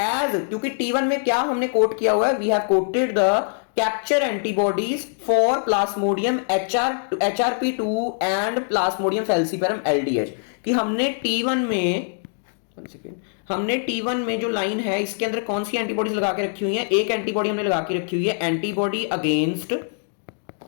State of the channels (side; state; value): right; silent; digital silence